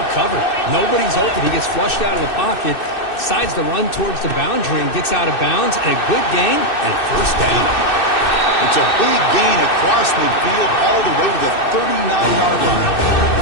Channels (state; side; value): late; right; 2.6 ms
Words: covered. Nobody's open. He gets flushed out of the pocket, decides to run towards the boundary and gets out of bounds, and a good gain and first down. It's a big gain across midfield all the way to the 39-yard line.